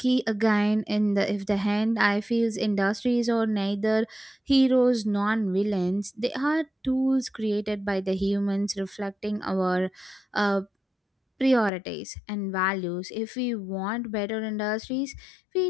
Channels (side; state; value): right; drops out; at 11.7 s